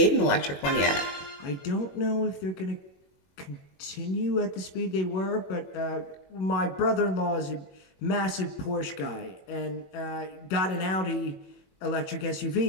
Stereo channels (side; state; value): right; late; 21 ms